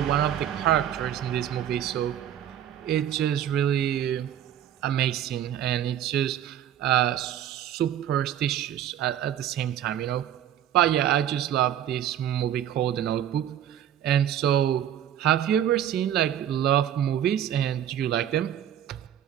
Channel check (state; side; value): quieter; left; 10.6 dB